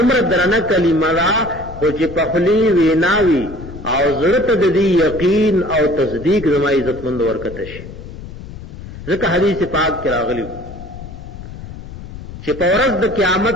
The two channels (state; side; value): noise; left; rumble, 13 dB below the sound